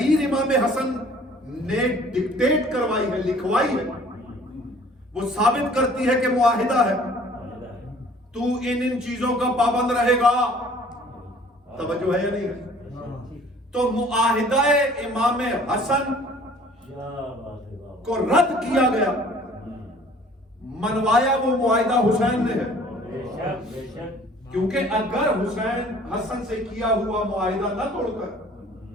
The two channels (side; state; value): both; normal; correlation 0.53